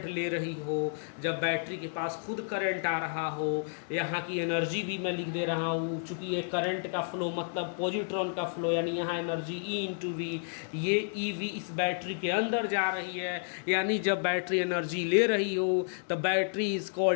ले रही हो, जब बैटरी के पास खुद करंट आ रहा हो, यहाँ की एनर्जी भी मैं लिख दे रहा हूँ, चूँकि ये करंट का फ्लो मतलब पॉजिट्रॉन का फ्लो, यानी यहाँ एनर्जी E इंटू वी, ये EV इस बैटरी के अंदर जा रही है। यानी जब बैटरी एनर्जी ले रही हो तो battery is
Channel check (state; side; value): silent; right; 57 dB below the other